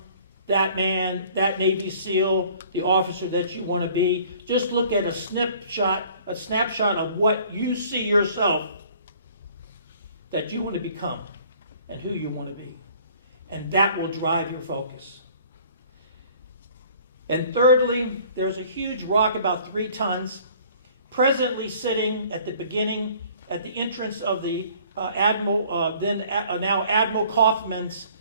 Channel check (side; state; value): both; inverted; correlation -0.53